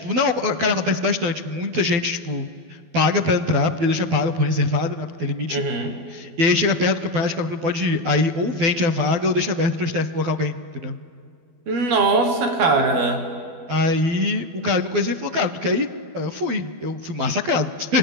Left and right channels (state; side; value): late; left; 12 ms